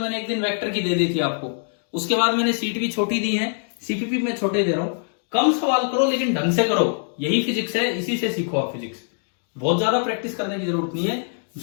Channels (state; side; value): silent; right; 63 dB below the other